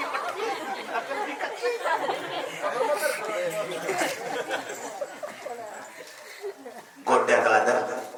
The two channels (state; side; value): identical; both; correlation 1.00